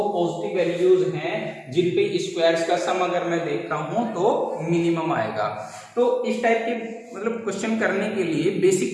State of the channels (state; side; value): identical; both; correlation 1.00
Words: पॉजिटिव वैल्यूज हैं जिन पे स्क्वायर्स का सम अगर मैं देख रहा हूं तो मिनिमम आएगा। तो इस टाइप के मतलब क्वेश्चन करने के लिए